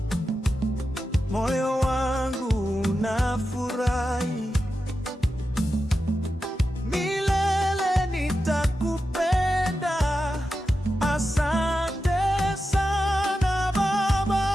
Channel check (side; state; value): both; normal; correlation 0.90